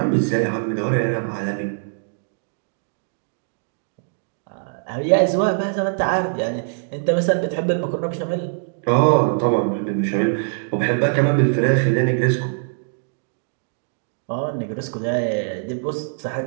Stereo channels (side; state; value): left; silent; digital silence